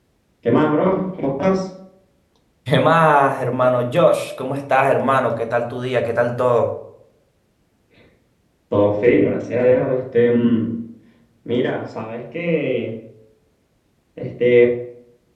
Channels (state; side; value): identical; both; correlation 1.00